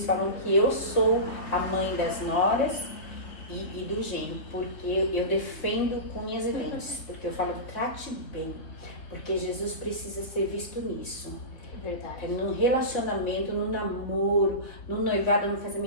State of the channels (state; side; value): late; right; 3.4 ms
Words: falam que eu sou a mãe das noras e do genro, porque eu defendo com unhas e dentes, porque eu falo, trate bem, porque Jesus precisa ser visto nisso. É verdade. No relacionamento, no namoro, no noivado, no